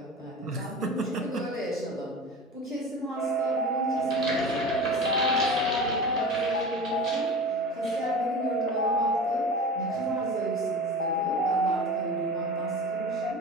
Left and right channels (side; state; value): both; normal; correlation 0.32